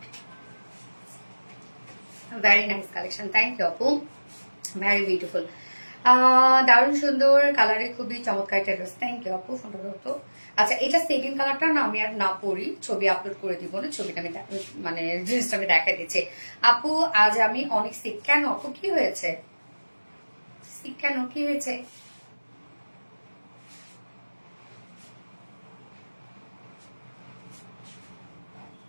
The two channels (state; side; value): inverted; both; correlation -1.00